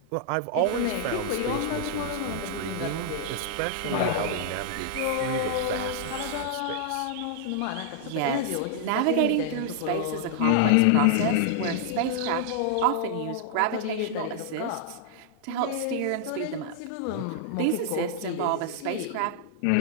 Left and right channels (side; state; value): both; different; correlation -0.01